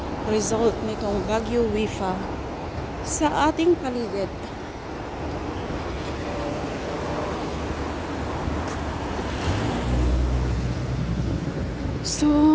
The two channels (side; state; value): both; identical; correlation 1.00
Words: result nitong Baguio Wifa sa ating paligid?